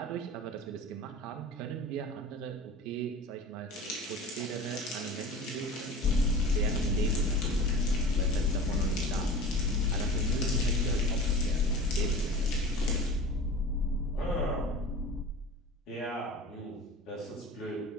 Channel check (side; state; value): both; normal; correlation 0.36